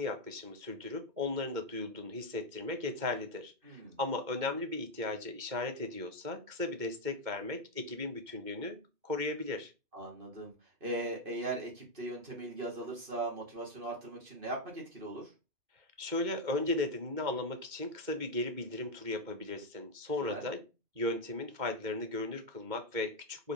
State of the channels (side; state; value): left; late; 2.2 ms